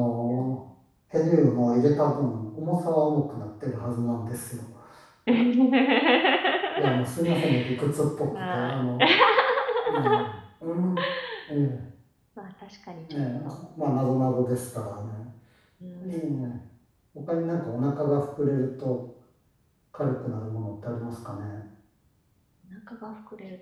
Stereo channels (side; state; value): both; identical; correlation 1.00